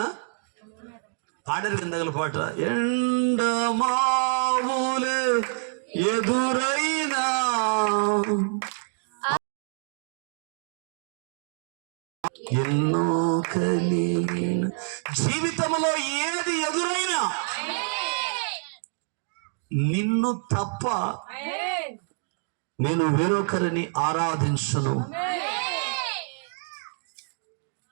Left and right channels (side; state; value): left; silent; 60 dB below the other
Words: పాడరు కిందగల పాట, ఎండమావులే ఎదురైనా ఎన్నో కలిగిన, జీవితంలో ఏది ఎదురైనా నిన్ను తప్ప నేను వేరొకరిని ఆరాధించను.